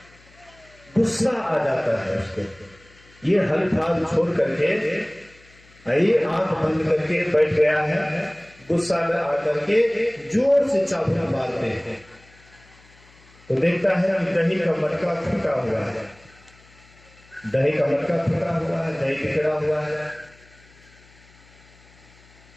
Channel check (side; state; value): left; noise; hum, 27 dB below the sound